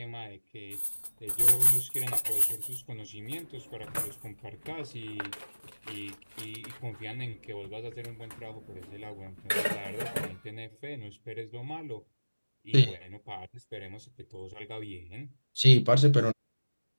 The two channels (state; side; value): inverted; both; correlation -1.00